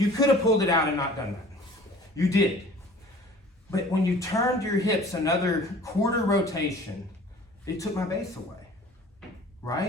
could have pulled it out and not done that. You did. But when you turned your hips another quarter rotation, it took my base away,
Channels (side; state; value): both; normal; correlation 0.47